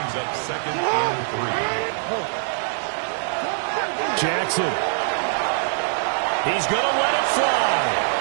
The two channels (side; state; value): left; silent; digital silence